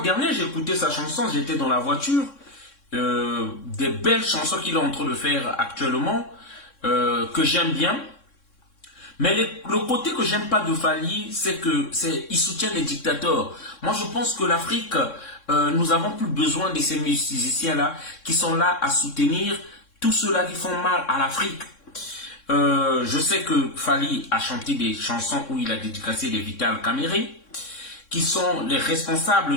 j'ai écouté sa chanson, j'étais dans la voiture, des belles chansons qu'il est en train de faire actuellement, que j'aime bien. Mais le côté que j'aime pas de Fally, c'est qu'il soutient les dictateurs. Moi, je pense que l'Afrique, nous avons plus besoin de ces musiciens-là qui sont là à soutenir tous ceux-là qui font mal à l'Afrique. Je sais que Fally a chanté des chansons où il a dédicacé des Vital Kamere, qui sont les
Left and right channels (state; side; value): late; right; 3.6 ms